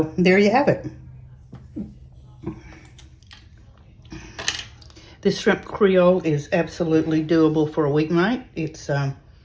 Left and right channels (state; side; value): identical; both; correlation 1.00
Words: there you have it. This shrimp Creole is absolutely doable for a weeknight. It's,